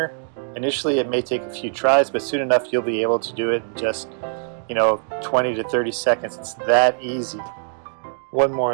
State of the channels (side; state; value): left; silent; digital silence